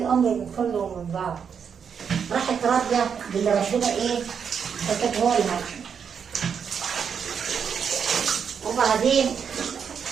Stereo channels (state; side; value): quieter; left; 7.0 dB